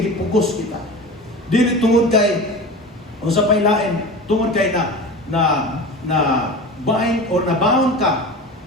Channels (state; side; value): normal; both; correlation 0.32